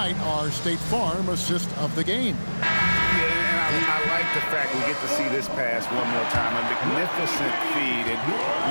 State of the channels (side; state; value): both; inverted; correlation -1.00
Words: our State Farm assist of the game. Yeah, and I like the fact we get to see this pass one more time. A magnificent feed. And